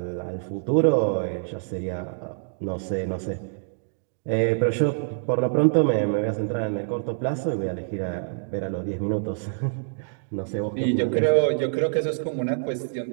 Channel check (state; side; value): silent; left; digital silence